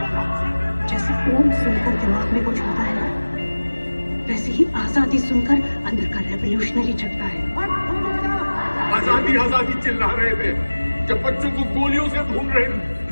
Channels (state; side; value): inverted; both; correlation -1.00